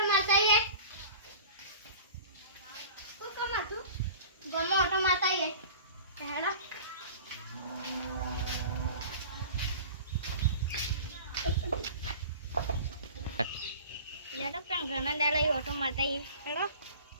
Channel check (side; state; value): both; inverted; correlation -0.40